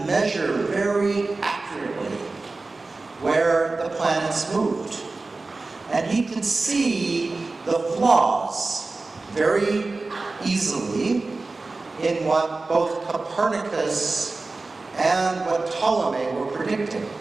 measure very accurately where the planets moved. And he could see the flaws very easily in what both Copernicus and what Ptolemy were predicting.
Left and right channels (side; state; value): left; quieter; 3.5 dB